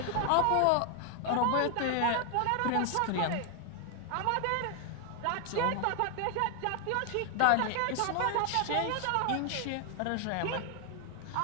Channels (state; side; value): different; both; correlation 0.00